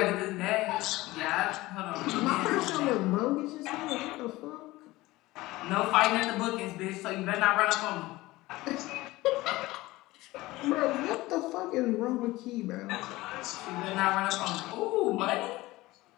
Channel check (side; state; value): right; quieter; 19.1 dB